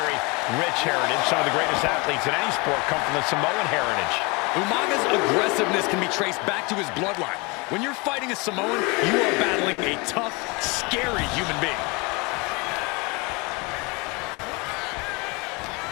rich heritage. Some of the greatest athletes in any sport come from the Samoan heritage. Umaga's aggressiveness can be traced back to his bloodline. When you're fighting a Samoan, you are battling a tough, scary human being.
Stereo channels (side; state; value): right; quieter; 27.8 dB